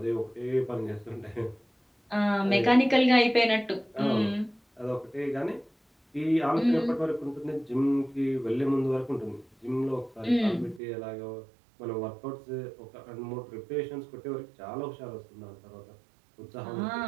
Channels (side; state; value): left; drops out; at 10.8 s